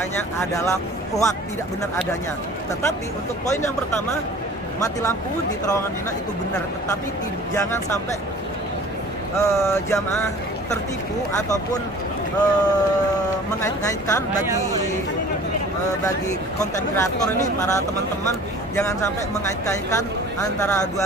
adalah hoak, tidak benar adanya. Tetapi untuk poin yang pertama, mati lampu di terowongan Mina itu benar, tetapi jangan sampai jamaah tertipu ataupun mengait-ngaitkan bagi konten kreator ini, para teman-teman jangan sampai mengait-ngaitkan antara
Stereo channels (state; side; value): normal; both; correlation 0.45